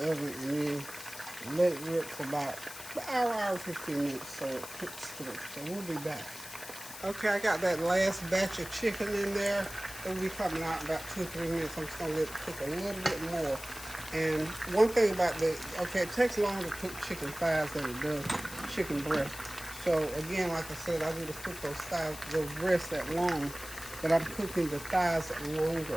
oven, and then let it rip for about an hour, 15 minutes so it cooks through. So we'll be back. Okay, I got that last batch of chicken in there. It'll be coming out in about 2-3 minutes. I'm just going to let it cook a little bit more. And one thing about it takes longer to cook chicken thighs than it does chicken breast. So again, like I said, I need to cook those breasts that long, but I'm cooking the thighs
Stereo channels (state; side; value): noise; left; hiss, 12 dB below the sound